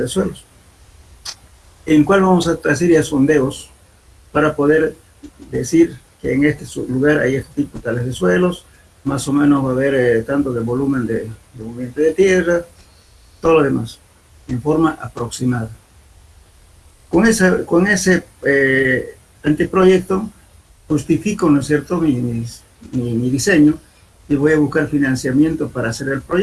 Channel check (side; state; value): both; identical; correlation 1.00